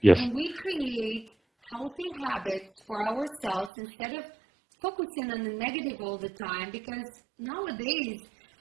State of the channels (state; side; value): drops out; left; at 3.7 s